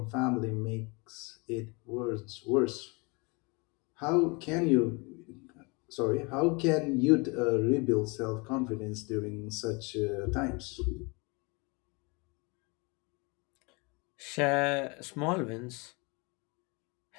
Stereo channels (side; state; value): right; quieter; 29.1 dB